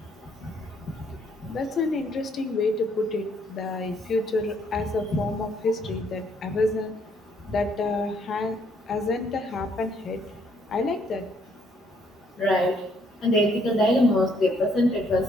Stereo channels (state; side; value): normal; both; correlation 0.68